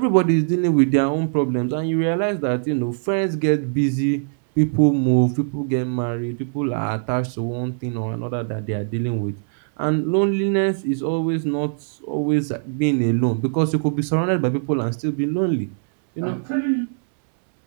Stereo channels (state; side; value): silent; left; 65 dB below the other